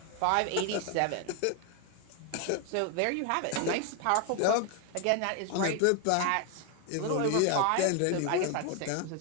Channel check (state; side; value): different; both; correlation 0.01